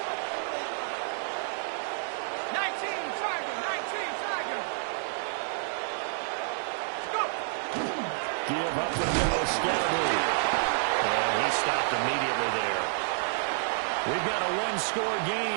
Give up the middle, Scalaboo. And he stopped immediately there. We've got a one-score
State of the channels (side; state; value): left; silent; digital silence